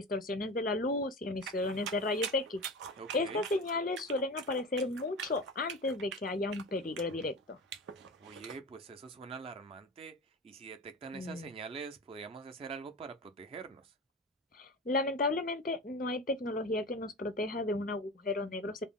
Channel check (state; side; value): normal; both; correlation 0.30